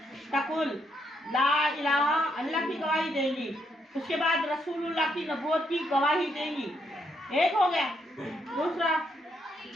तकुल ला इलाहा, अल्लाह की गवाही देंगी। उसके बाद रसूलुल्लाह की नबूवत की गवाही देंगी। एक हो गया। दूसरा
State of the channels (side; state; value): both; normal; correlation 0.76